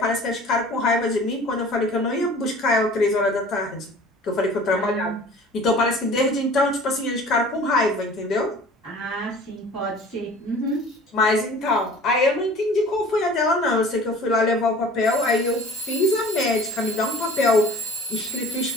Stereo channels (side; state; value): both; normal; correlation 0.45